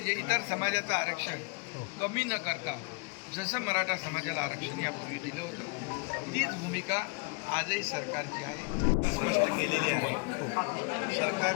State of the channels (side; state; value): right; quieter; 32.0 dB